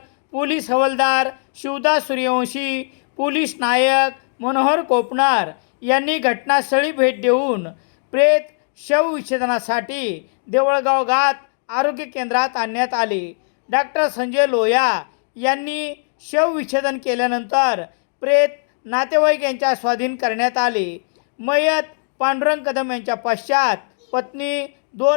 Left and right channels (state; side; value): silent; right; digital silence